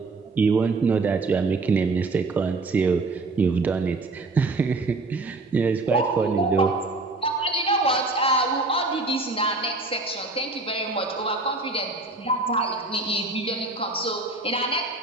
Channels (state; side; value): quieter; left; 3.3 dB